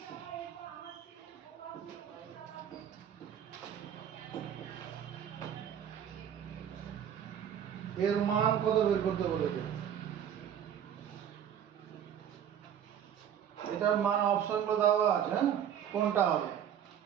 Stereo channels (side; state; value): left; quieter; 9.3 dB